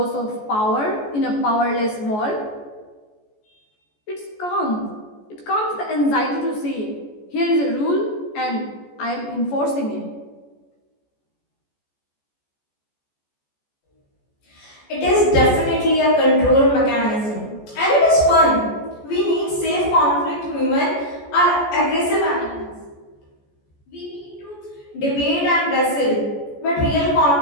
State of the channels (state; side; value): late; right; 14 ms